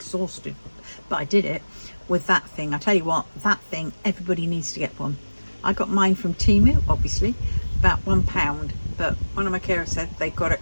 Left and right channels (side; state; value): both; inverted; correlation -1.00